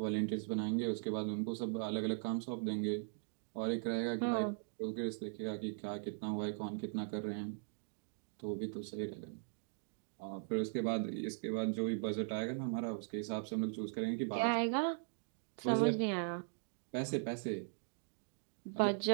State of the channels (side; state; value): left; silent; digital silence